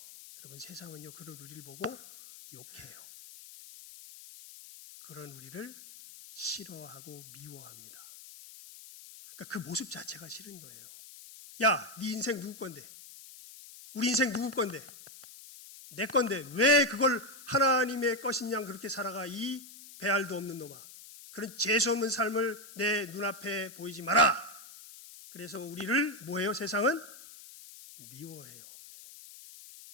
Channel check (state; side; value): noise; left; hiss, 17 dB below the sound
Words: 여러분 세상은요 그런 우리를 보고 욕해요. 그런 우리를 싫어하고 미워합니다. 그러니까 그 모습 자체가 싫은 거예요. 야, 네 인생 누구 건데? 우리 인생 누구 건데? 내 건데 왜 그걸 하나님의 것인 양 그렇게 살아가 이 배알도 없는 놈아. 그런 재수 없는 삶을 내 눈앞에 보이지 마라. 그래서 우리를 뭐해요? 세상은 미워해요.